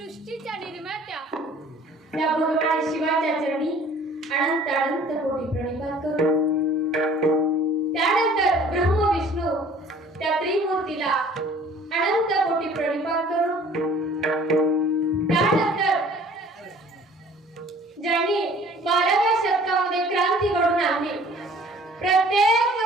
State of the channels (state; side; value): normal; both; correlation 0.51